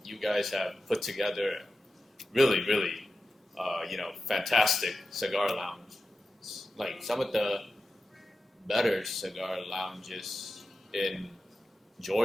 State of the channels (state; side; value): normal; both; correlation 0.91